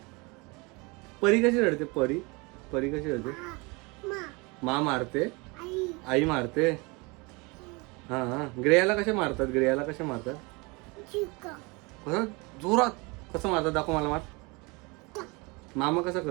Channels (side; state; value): left; quieter; 27.4 dB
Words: परी कशी रडते? परी कशी रडते? माँ मारते, आई मारते. हां, ग्रेयाला कसे मारतात? कसं जोरात कसं मारतात? दाखव मला. मामा कसा